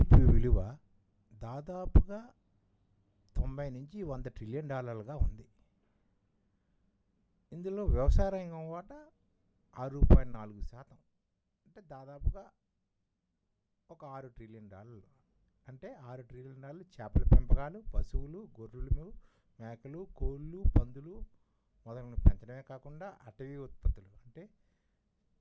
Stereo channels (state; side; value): identical; both; correlation 1.00